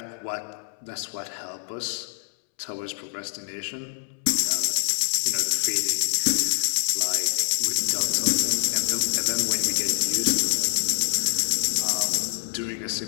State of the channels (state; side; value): silent; right; 61 dB below the other